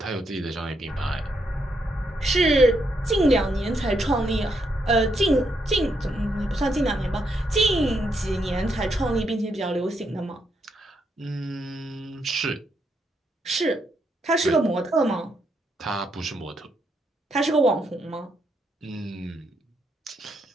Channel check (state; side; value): normal; both; correlation 0.78